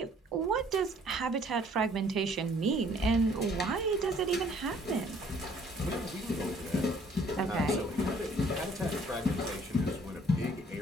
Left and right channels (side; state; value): both; normal; correlation 0.59